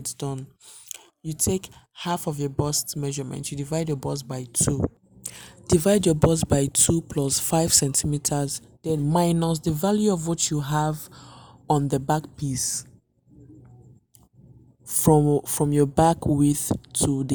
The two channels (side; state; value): both; identical; correlation 1.00